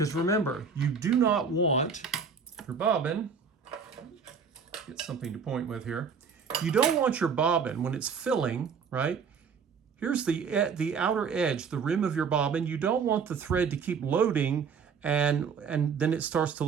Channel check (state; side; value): quieter; left; 6.0 dB